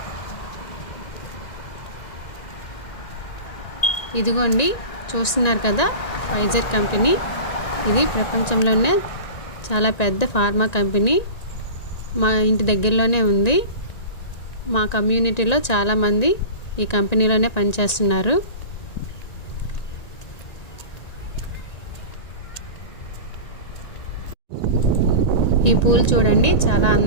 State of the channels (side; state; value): right; late; 1.9 ms